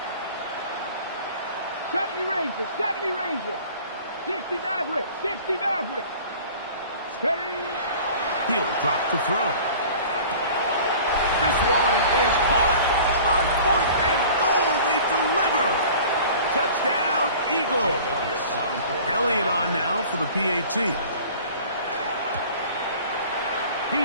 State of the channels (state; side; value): inverted; both; correlation -0.44